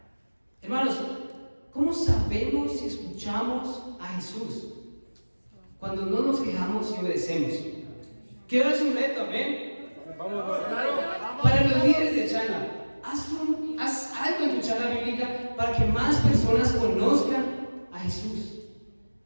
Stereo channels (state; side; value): inverted; both; correlation -1.00